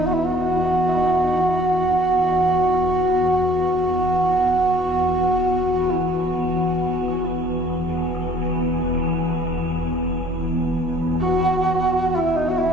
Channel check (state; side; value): normal; both; correlation 0.56